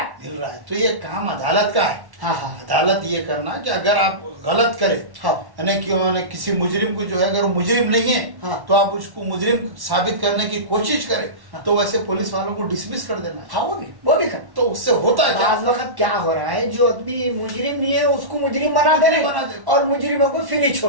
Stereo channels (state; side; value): late; left; 1.1 ms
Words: मिल रहा है। तो ये काम अदालत का है। हाँ हाँ अदालत ये करना कि अगर आप गलत करें, हाँ। यानी क्यों ना किसी मुजरिम को जो है, अगर वो मुजरिम नहीं है, हाँ। तो आप उसको मुजरिम साबित करने की कोशिश करें, हाँ। तो वैसे पुलिस वालों को डिसमिस कर देना है। हाँ, वो भी करना। तो उससे होता है क्या? बाज़ वक्त क्या हो रहा है, जो आदमी मुजरिम नहीं है उसको मुजरिम बना दे रहे बना हैं दे। और मुजरिमों को फ्री